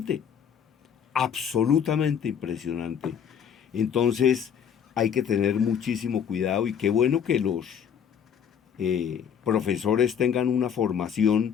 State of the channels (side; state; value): right; quieter; 8.0 dB